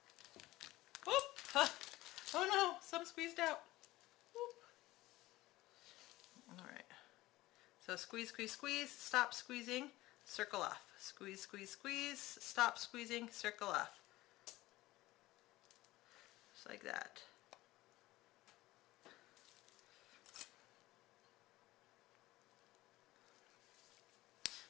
Whoop! Huh. Oh no, some squeezed out. Whoop. All right. So squeeze, squeeze, squeeze, stop squeezing, circle off. Squeeze, squeeze, squeeze, stop squeezing, circle off. Just like that.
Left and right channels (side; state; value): right; quieter; 17.9 dB